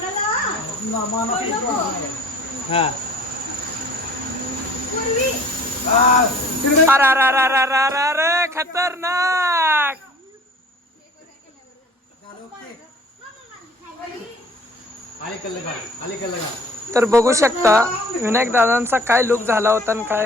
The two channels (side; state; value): both; normal; correlation 0.50